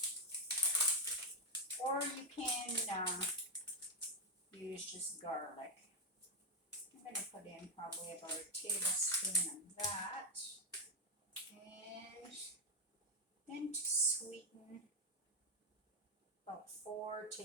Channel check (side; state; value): both; normal; correlation 0.04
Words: Or you can use just garlic. I'm going to put in probably about a tablespoon of that. And then to sweeten, about 4